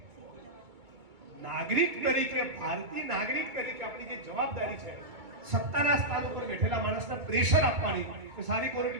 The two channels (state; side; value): late; left; 2.2 ms